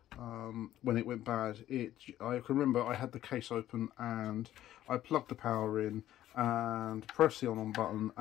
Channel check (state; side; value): quieter; right; 13.0 dB